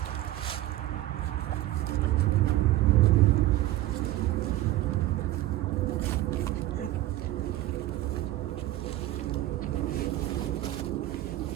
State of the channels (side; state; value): left; quieter; 15.5 dB